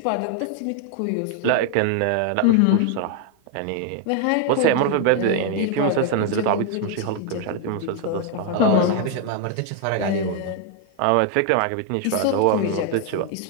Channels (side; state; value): both; different; correlation 0.00